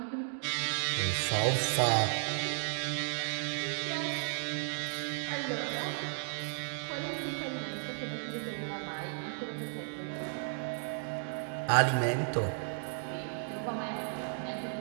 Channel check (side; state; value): left; silent; digital silence